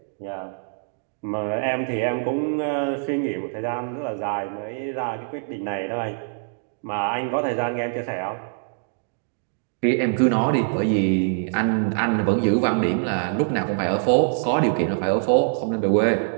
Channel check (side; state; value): left; silent; digital silence